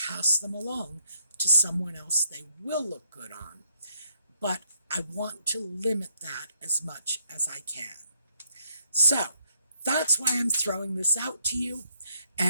them along to someone else they will look good on. But I want to limit that as much as I can. So that's why I'm throwing this out to you.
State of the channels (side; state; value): both; inverted; correlation -0.71